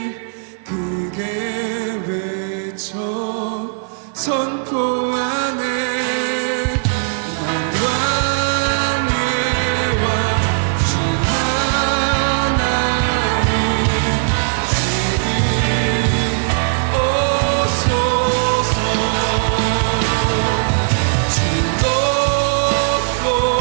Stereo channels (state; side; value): silent; left; 57 dB below the other